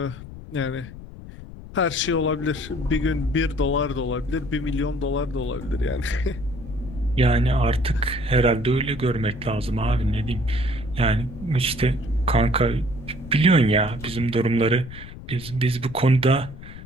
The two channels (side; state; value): left; noise; rumble, 14 dB below the sound